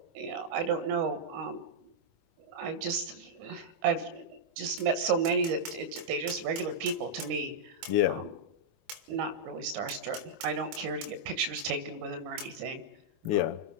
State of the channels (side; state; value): left; late; 19 ms